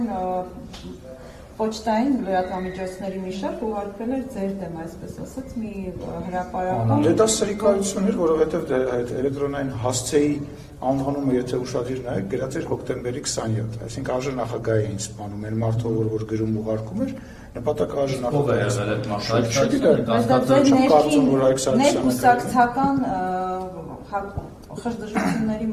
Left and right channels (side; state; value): both; identical; correlation 1.00